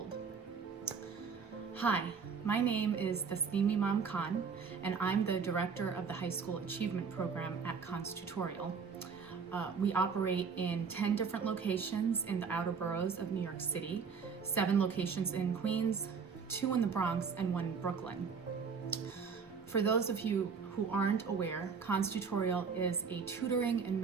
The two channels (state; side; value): quieter; left; 5.8 dB